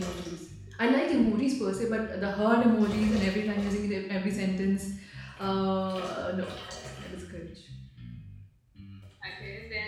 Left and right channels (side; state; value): both; identical; correlation 1.00